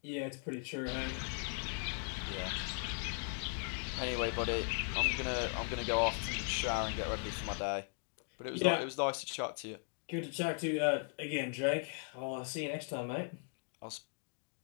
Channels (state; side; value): silent; right; 52 dB below the other